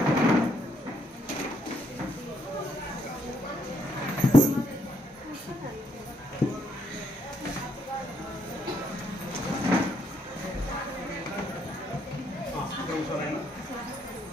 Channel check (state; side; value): normal; both; correlation 0.73